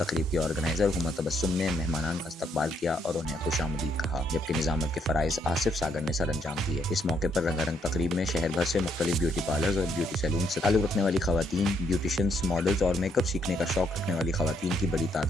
तकरीब के ऑर्गेनाइजर हुमा तबस्सुम ने मेहमानान का इस्तकबाल किया और उन्हें खुशामदीद कहा, जबकि निजामत के फराइज आसिफ सागर ने सर अंजाम दिए। इस मौके पर रंगारंग तकरीब में शहर भर से मुख्तलिफ ब्यूटी पार्लर्स और ब्यूटी सैलून से ताल्लुक रखने वाली खवातीन, ब्यूटिशियंस, मॉडल्स और मेकअप सीखने का शौक रखने वाली खवातीन की बड़ी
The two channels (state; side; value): normal; both; correlation 0.73